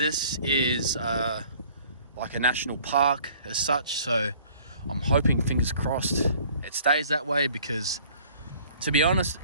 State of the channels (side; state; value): both; inverted; correlation -0.54